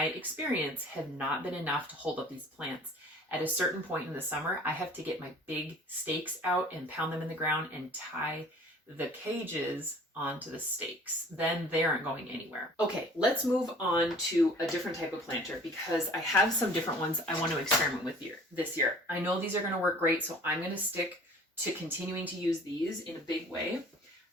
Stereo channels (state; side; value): normal; both; correlation 0.49